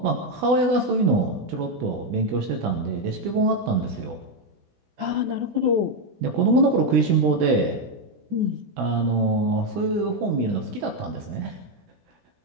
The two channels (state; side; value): late; left; 16 ms